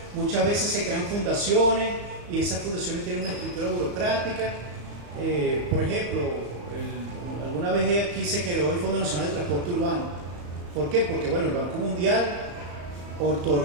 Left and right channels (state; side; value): late; left; 35 ms